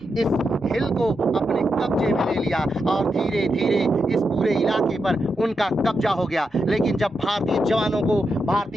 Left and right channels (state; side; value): normal; both; correlation 0.86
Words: हिल को अपने कब्जे में ले लिया और धीरे धीरे इस पूरे इलाके पर उनका कब्जा हो गया। लेकिन जब भारतीय जवानों को,